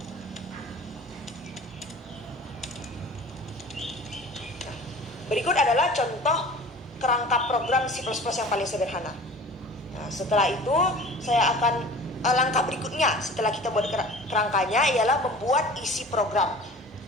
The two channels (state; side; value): normal; both; correlation 0.42